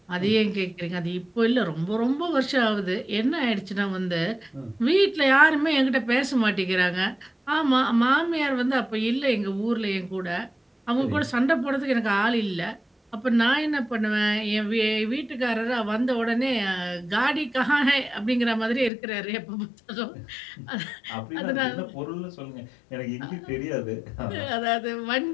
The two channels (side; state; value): right; drops out; at 18.9 s